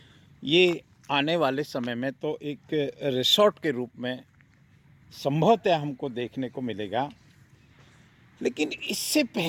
ये आने वाले समय में तो एक रिसोर्ट के रूप में संभवतः हमको देखने को मिलेगा, लेकिन इससे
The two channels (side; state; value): both; identical; correlation 1.00